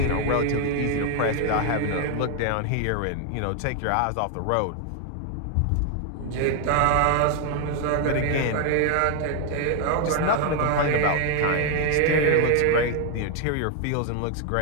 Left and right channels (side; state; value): both; different; correlation 0.01